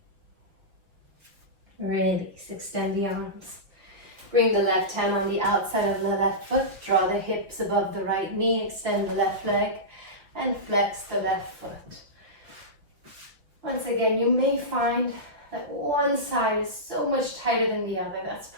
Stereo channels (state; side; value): late; left; 5.4 ms